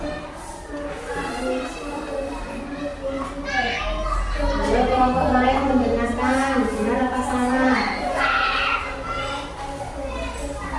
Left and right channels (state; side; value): identical; both; correlation 1.00